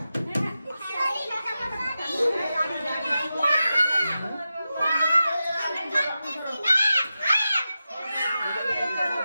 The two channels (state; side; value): inverted; both; correlation -0.92